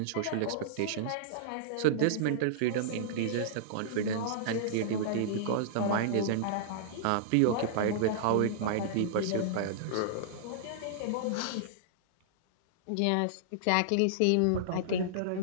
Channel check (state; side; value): different; both; correlation -0.02